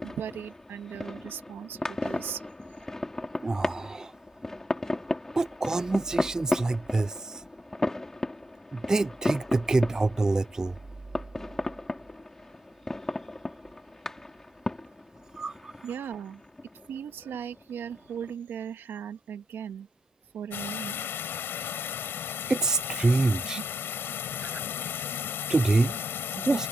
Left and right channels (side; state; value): both; normal; correlation 0.83